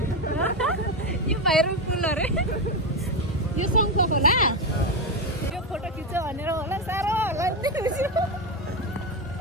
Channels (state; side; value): normal; both; correlation 0.11